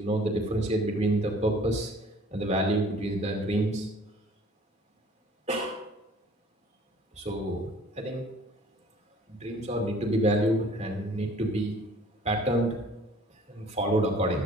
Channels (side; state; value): both; normal; correlation 0.52